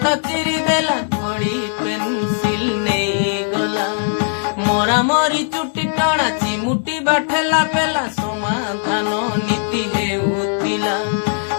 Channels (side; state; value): right; silent; digital silence